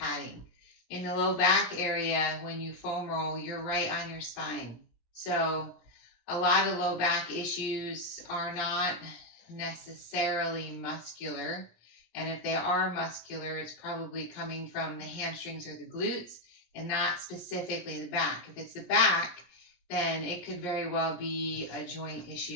In the low back area, when you foam roll, you're right on your spine. So a lot of low back issues are not necessarily muscular. And if they are muscular, it's probably coming from the hamstrings or the glutes and not specifically the back. If it's the back, then it could very well be a joint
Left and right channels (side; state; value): right; late; 17 ms